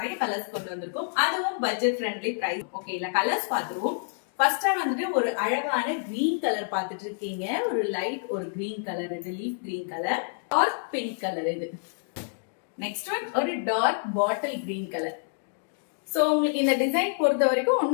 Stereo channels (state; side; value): silent; right; digital silence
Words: கலர்ஸ் கொண்டு வந்திருக்கோம். அதுவும் பட்ஜெட் ஃப்ரெண்ட்லி பிரைஸ். ஓகே, இல்ல கலர்ஸ் பாத்துருவோம். ஃபர்ஸ்டா வந்துட்டு ஒரு அழகான கிரீன் கலர் பாத்துட்டு இருக்கீங்க. ஒரு லைட் ஒரு கிரீன் கலர், இது leaf green colour. Dark pink colour இது. நெக்ஸ்ட் ஒன் ஒரு dark bottle green colour. So உங்களுக்கு இந்த டிசைன் பொறுத்த வரைக்கும்